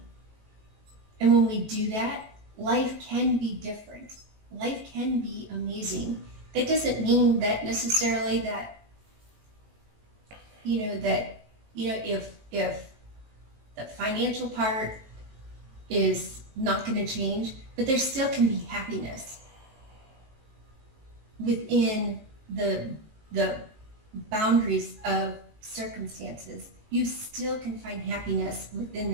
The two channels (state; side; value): late; left; 19 ms